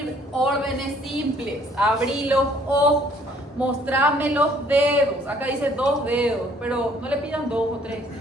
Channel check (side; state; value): both; normal; correlation 0.60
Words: Órdenes simples. Abrí los ojos, mostrame los dedos. Acá dice 2 dedos, pero no le pidan 2 o 3.